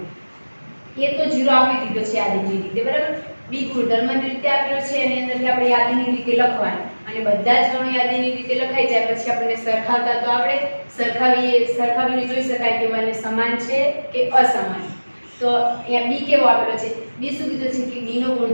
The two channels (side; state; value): both; inverted; correlation -1.00